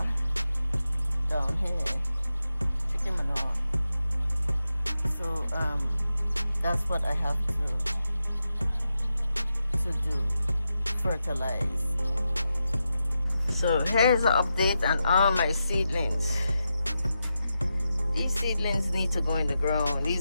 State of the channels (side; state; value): both; inverted; correlation -0.88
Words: down here, chicken manure. So that's what I have to do, fertilize. So here's an update on all my seedlings. These seedlings need to go in the ground.